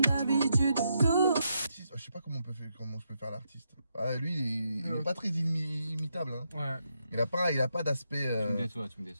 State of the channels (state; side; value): inverted; both; correlation -0.81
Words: Je sais pas comment je peux faire l'artiste. Lui, il est pas très imitable. Hein. Il a pas d'aspect. Tu me